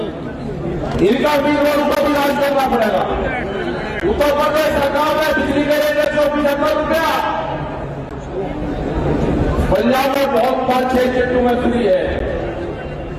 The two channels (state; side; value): identical; both; correlation 1.00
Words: इनका भी रोड को भी राज करना पड़ेगा। उत्तर प्रदेश सरकार ने बिजली के रेट 175 रुपया, पंजाब में बहुत 5-6 चट्टू में फ्री है।